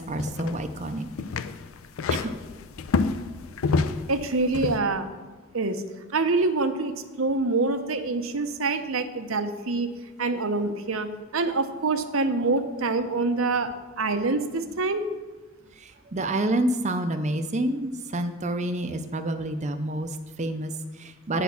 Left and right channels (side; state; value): both; normal; correlation 0.19